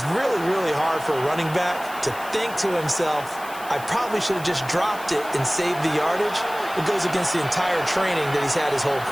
really, really hard for a running back to think to himself, I probably should have just dropped it and saved the yardage. It goes against the entire training that he's had his whole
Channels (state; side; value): noise; left; hiss, 17 dB below the sound